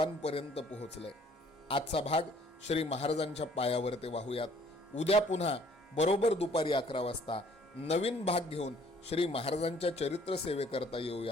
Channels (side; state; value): both; normal; correlation 0.59